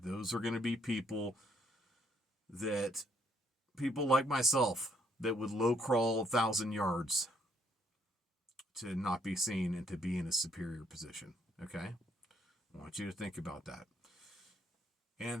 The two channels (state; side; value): normal; both; correlation 0.69